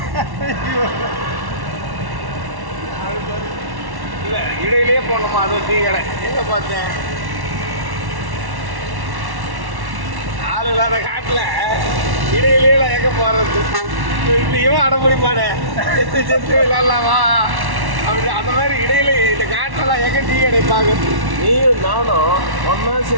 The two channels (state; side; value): late; left; 1.1 ms